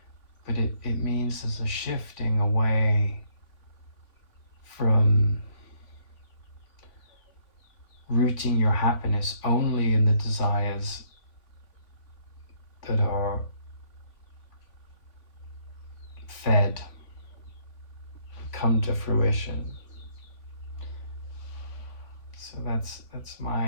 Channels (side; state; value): right; late; 3.5 ms